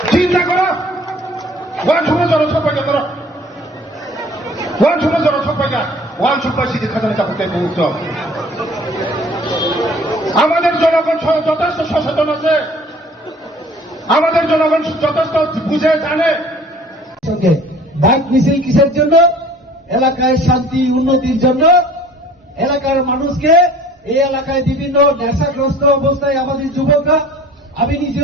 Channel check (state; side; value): normal; both; correlation 0.49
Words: চিন্তা করো ওয়ান সময় জনসংখ্যা করো ওয়ান সময় জনসংখ্যা ওয়ান সুপার সিটি খাজানা চাপতে মুক্ত আমাদের জনগণ যথেষ্ট সচেতন আছে আমাদের জনগণ যথেষ্ট বুঝে জানে বাইক মিছিল কিসের জন্য এলাকায় শান্তি উন্নতির জন্য এলাকার মানুষকে এই এলাকায় বিভিন্ন নেশাগ্রস্ত অবস্থায় আমাদের যুবকরা আমি